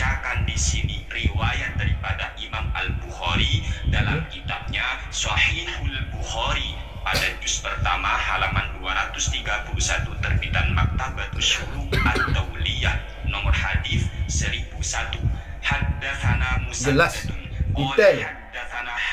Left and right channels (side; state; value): both; identical; correlation 1.00